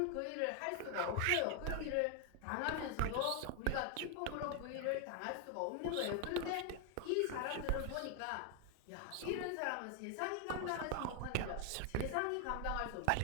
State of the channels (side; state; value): both; different; correlation 0.00